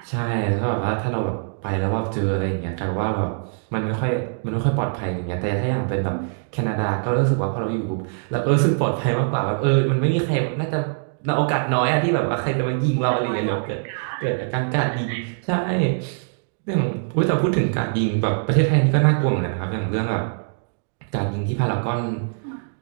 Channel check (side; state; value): left; silent; digital silence